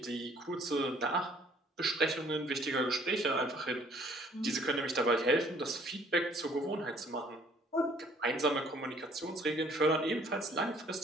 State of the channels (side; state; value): both; normal; correlation 0.59